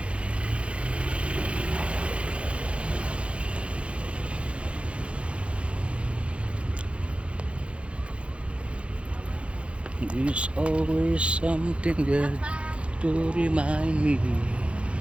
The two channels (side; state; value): left; late; 0.060 ms